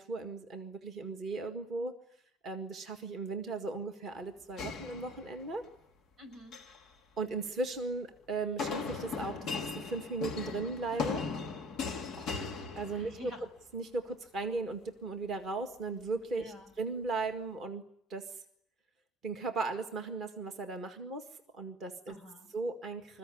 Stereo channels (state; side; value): normal; both; correlation 0.46